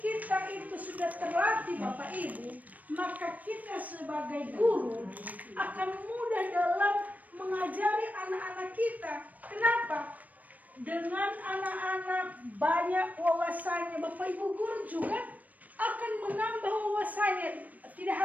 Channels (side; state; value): left; late; 0.075 ms